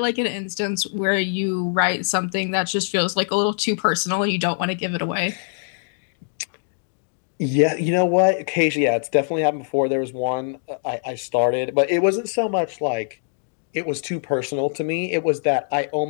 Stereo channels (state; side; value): silent; right; digital silence